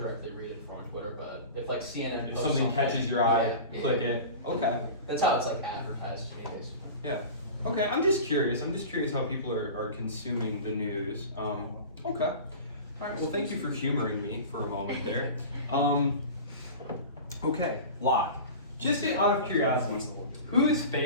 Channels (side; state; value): both; inverted; correlation -0.34